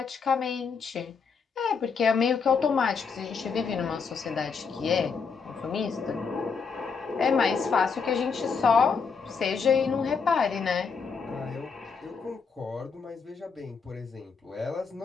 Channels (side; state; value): right; quieter; 5.5 dB